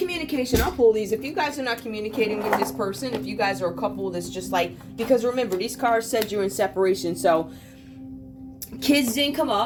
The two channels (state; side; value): identical; both; correlation 1.00